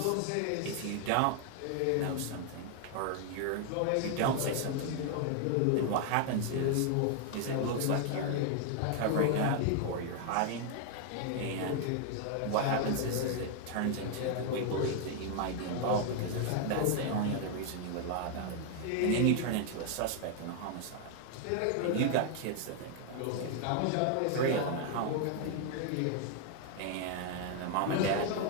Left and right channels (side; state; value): both; different; correlation 0.00